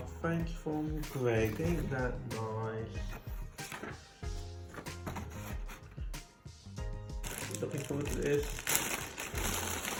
thank you from Greg. Ain't that nice? Looking forward to this.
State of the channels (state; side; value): identical; both; correlation 1.00